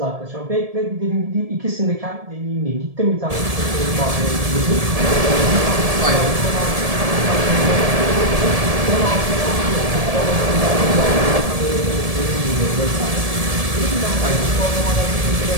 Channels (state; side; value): late; left; 1.7 ms